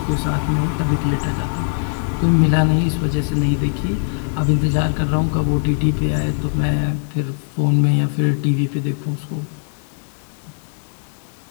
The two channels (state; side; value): silent; right; 66 dB below the other